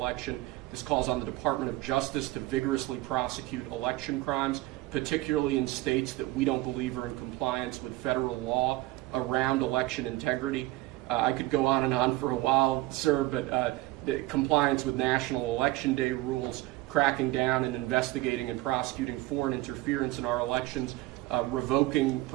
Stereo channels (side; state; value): left; quieter; 18.6 dB